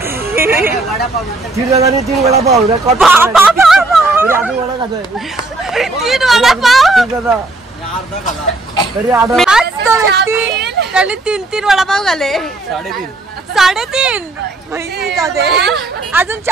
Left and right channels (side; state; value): left; quieter; 3.0 dB